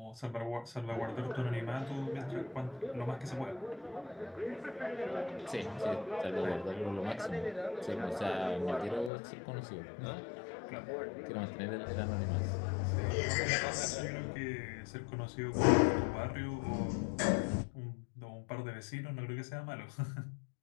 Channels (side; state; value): right; drops out; at 9.1 s